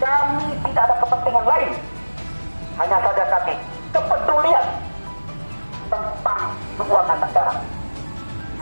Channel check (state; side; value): inverted; both; correlation -1.00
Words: tidak ada kepentingan lain, hanya saja kami kepedulian tentang keuangan negara.